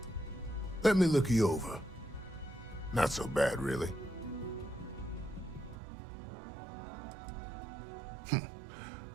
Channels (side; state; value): left; drops out; at 5.8 s